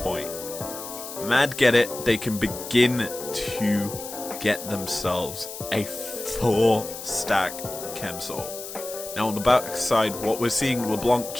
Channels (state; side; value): noise; left; hiss, 10 dB below the sound